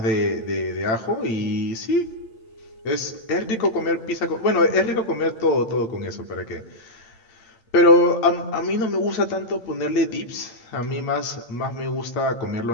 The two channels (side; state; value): right; late; 8.6 ms